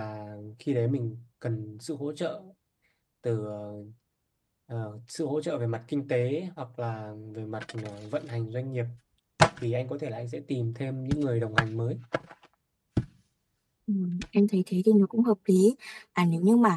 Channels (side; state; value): both; identical; correlation 1.00